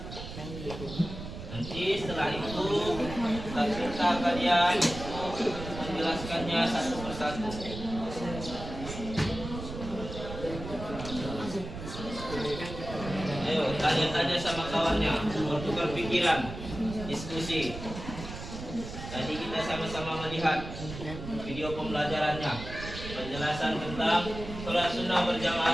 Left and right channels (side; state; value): right; noise; rumble, 9 dB below the sound